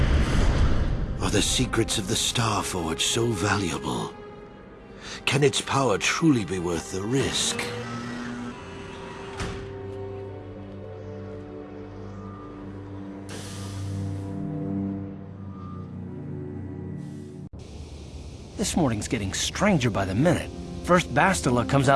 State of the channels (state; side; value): identical; both; correlation 1.00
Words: Are the secrets of the Star Forge so valuable? Can its power truly be worth the risk? This morning's getting stranger by the minute. First Bastila comes